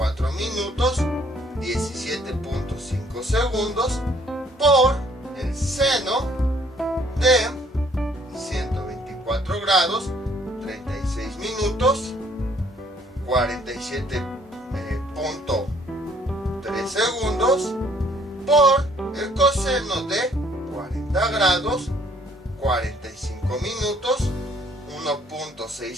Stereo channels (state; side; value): normal; both; correlation 0.62